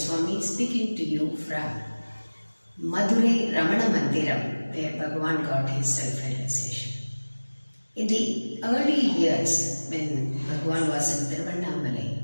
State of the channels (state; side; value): inverted; both; correlation -1.00